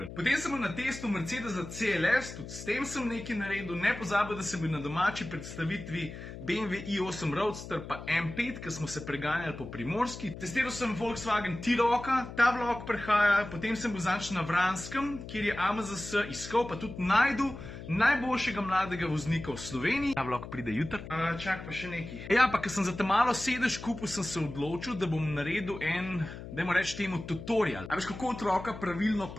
Potem sem bil na testu Mercedesa CLS, tudi s tem sem nekaj naredil, ne pozabil, da sem bil na domači predstavitvi BMW i8 Roadster pa M5, ki smo se preganjali po Primorski. Testiral sem Volkswagen T-Rocka, ta vlog prehaja, potem sem bil zanč na Vranskem, kjer je AMZS iskal, pa tudi najdu najboljšega mladega voznika v Sloveniji. Ta vlog pride jutri. Čak pa še nekaj. Ja, pa ker sem za te malo sedež kupil, sem se odločil, da bom naredil en, dajmo reči temu, tutorial. A veš, kako otroka pravilno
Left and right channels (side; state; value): left; noise; hum, 11 dB below the sound